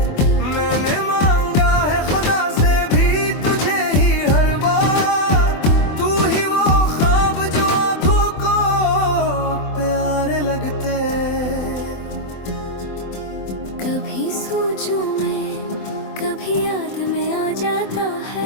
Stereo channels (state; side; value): late; right; 24 ms